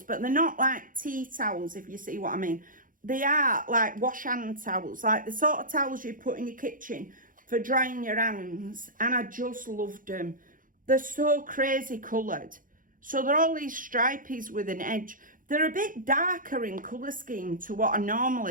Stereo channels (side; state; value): left; late; 0.39 ms